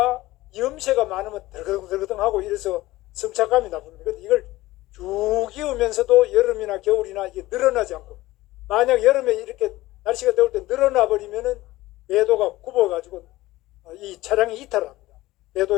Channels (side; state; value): right; quieter; 17.8 dB